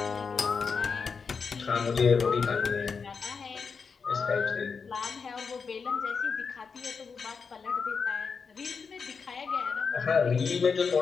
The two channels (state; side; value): quieter; right; 5.5 dB